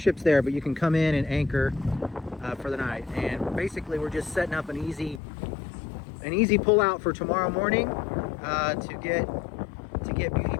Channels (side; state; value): right; drops out; at 5.2 s